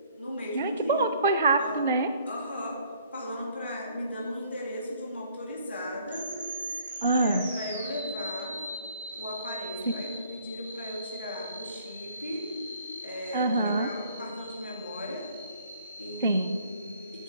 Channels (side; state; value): both; inverted; correlation -0.60